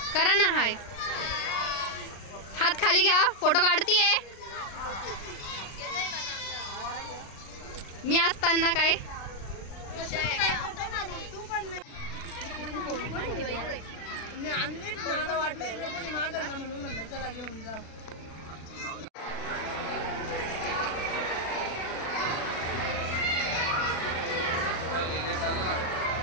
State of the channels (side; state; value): right; late; 36 ms